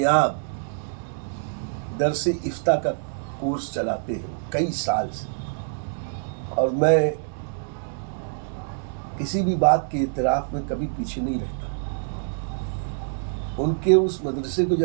درس افتاء کا کورس چلاتے ہیں کئی سال سے، اور میں کسی بھی بات کے اعتراف میں کبھی پیچھے نہیں رہتا۔ ان کے اس مدرسے کو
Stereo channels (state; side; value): silent; left; digital silence